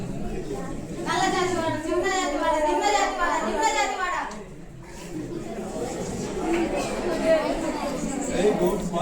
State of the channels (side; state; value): both; identical; correlation 1.00